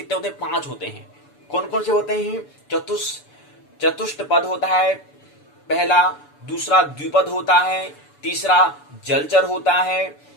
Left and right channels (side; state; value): right; late; 6.9 ms